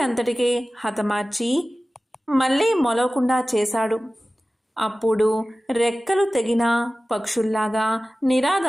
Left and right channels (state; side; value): normal; both; correlation 0.96